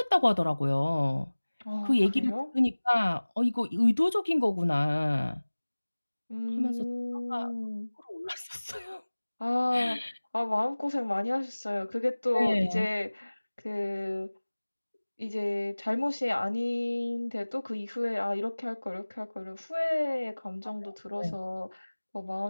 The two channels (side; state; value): both; inverted; correlation -1.00